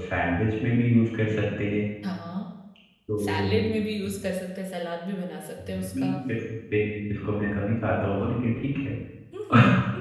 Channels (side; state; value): both; identical; correlation 1.00